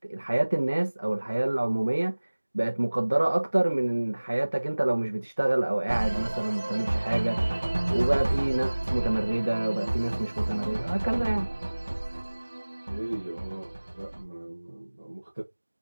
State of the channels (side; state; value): both; inverted; correlation -1.00